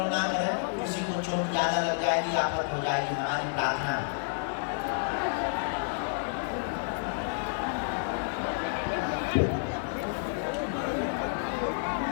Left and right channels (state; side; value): silent; right; 58 dB below the other